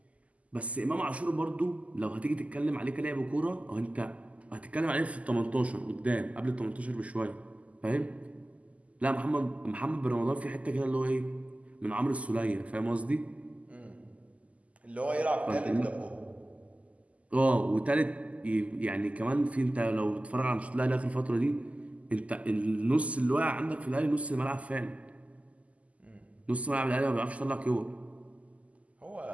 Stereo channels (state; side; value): late; left; 0.069 ms